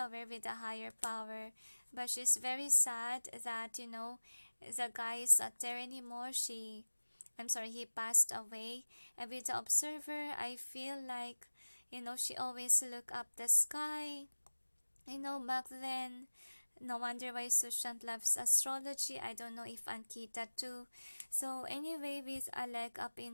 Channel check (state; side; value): inverted; both; correlation -1.00